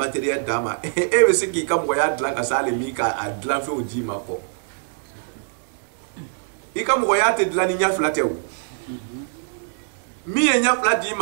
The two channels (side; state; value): left; silent; digital silence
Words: d'a ma e bɛ se k'i ka moya dilan ka s'ale min ka a dilan fɛnw d'i ma kɔ i ka moya tɛ dilan ni ɲɛ fila tɛ o min ye ɲɛ fila d'i